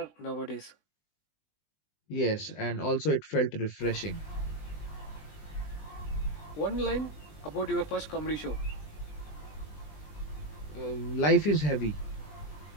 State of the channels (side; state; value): right; late; 20 ms